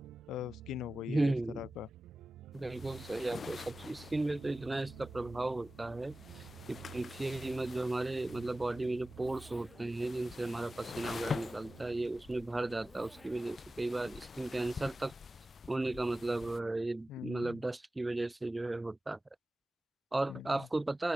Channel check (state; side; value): normal; both; correlation 0.95